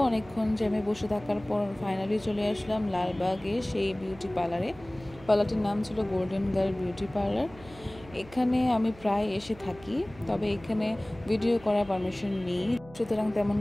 অনেকক্ষণ জ্যামে বসে থাকার পর ফাইনালি চলে আসলাম লালবাগে সেই বিউটি পার্লারে। পার্লারটির নাম ছিল গোল্ডেন গার্ল বিউটি পার্লার। এখানে আমি প্রায় এসে থাকি, তবে এখানে ভিডিও করার পারমিশন নেই, সুতরাং তেমন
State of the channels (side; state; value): right; noise; hum, 20 dB below the sound